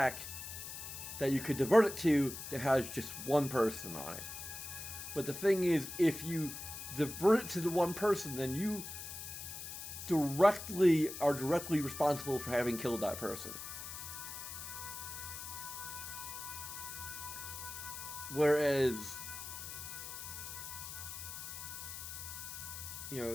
that you could divert it to that has just one person on it. But the thing is, if you divert it to the one person, then you are directly responsible for having killed that person. Whereas,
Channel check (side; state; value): left; noise; hiss, 8 dB below the sound